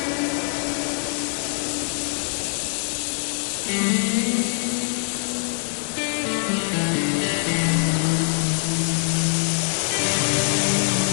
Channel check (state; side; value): silent; right; 63 dB below the other